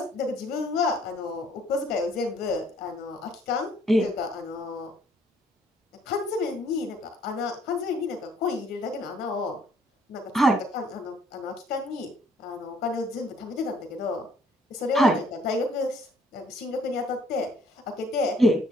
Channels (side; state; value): both; normal; correlation 0.63